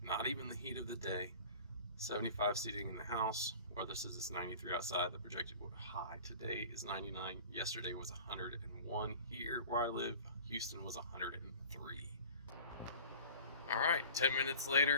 not even the heat of the day. 75 seating in the house. Weather says it's 93 outside. The projected high today is 99. Yesterday was 101 here where I live. Houston was 103. All right, 10 minutes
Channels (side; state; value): both; inverted; correlation -0.42